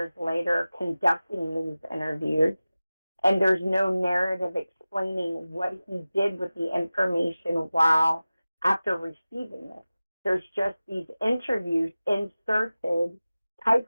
later conducting these interviews. And there's no narrative explaining what he did with the information while after receiving it. There's just these interviews inserted,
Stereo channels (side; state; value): both; inverted; correlation -0.96